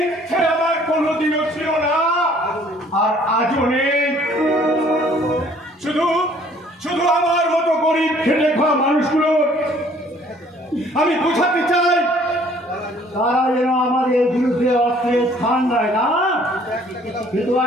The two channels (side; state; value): both; normal; correlation 0.58